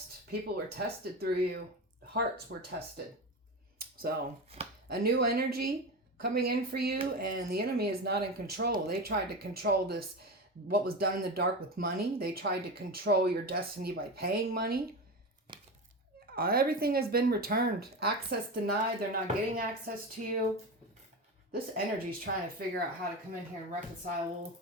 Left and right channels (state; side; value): normal; both; correlation 0.23